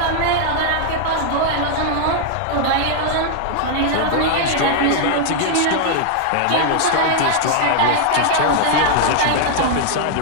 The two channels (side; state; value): both; different; correlation 0.00